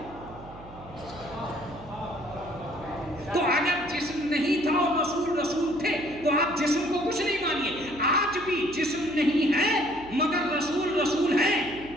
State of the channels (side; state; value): right; noise; hum, 18 dB below the sound